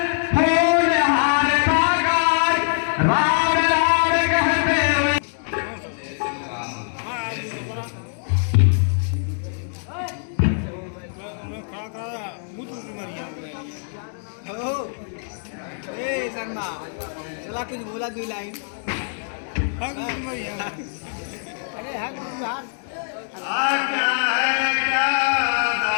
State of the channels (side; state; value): right; silent; digital silence